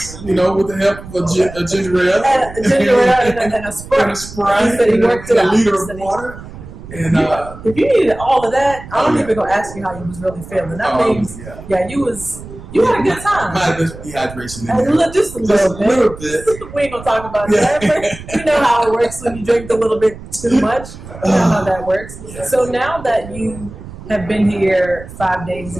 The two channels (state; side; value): noise; right; rumble, 15 dB below the sound